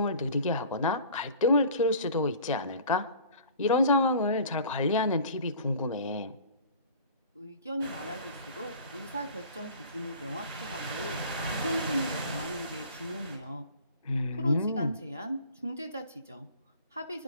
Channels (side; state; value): both; inverted; correlation -0.45